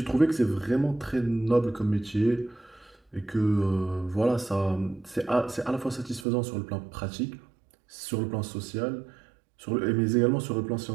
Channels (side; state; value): left; drops out; at 6.2 s